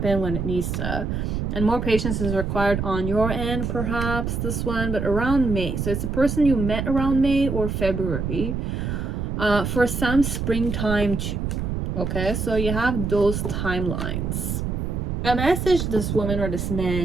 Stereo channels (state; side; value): noise; right; rumble, 2 dB below the sound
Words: when it needs to. And more patience is required on your end, perhaps, this one, but around May. So it's a person you met around May or February. For some, springtime too. Okay, so you have those timelines. A message this woman or this